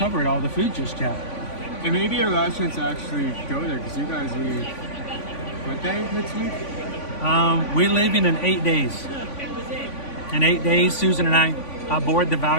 all the food just yet. And maybe our last chance to actually go there, because you guys leave, what day next week? We're leaving in 8 days. In 8 days, Susan and I board the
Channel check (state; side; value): late; right; 3.5 ms